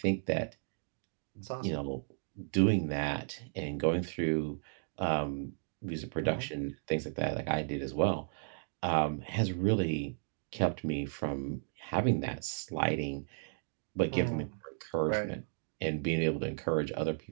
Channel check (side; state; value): left; silent; digital silence